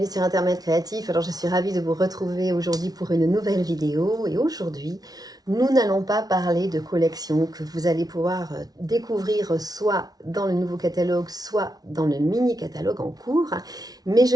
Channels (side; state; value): left; late; 0.19 ms